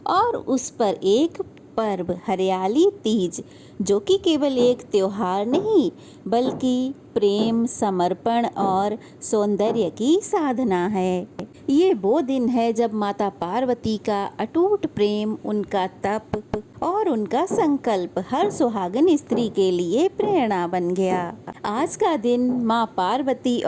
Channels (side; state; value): both; identical; correlation 1.00